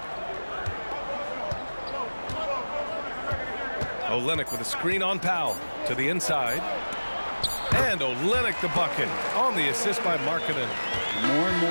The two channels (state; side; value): inverted; both; correlation -1.00